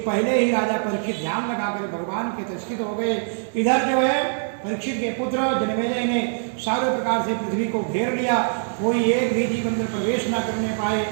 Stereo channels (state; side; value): silent; left; digital silence